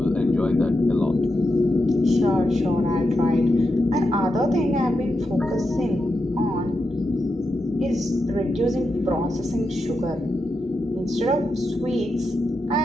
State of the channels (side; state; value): both; normal; correlation 0.87